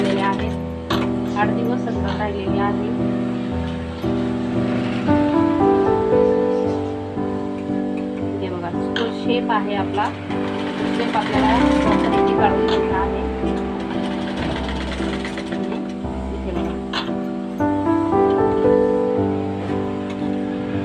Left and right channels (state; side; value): identical; both; correlation 1.00